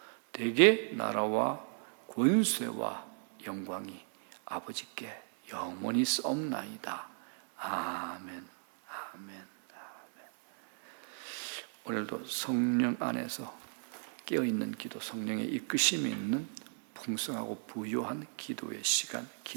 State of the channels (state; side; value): silent; left; 54 dB below the other